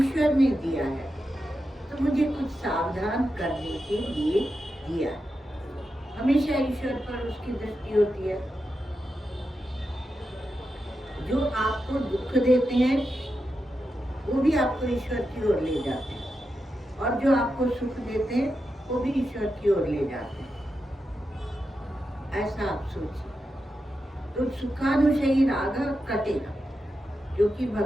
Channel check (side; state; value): both; normal; correlation 0.88